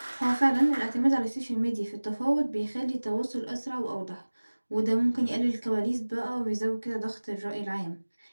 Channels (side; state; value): both; inverted; correlation -1.00